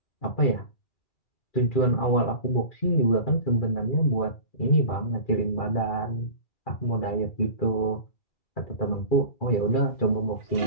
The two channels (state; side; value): late; right; 2.4 ms